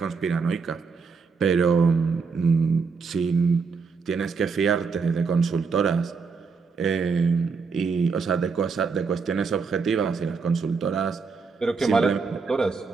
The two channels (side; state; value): left; quieter; 5.1 dB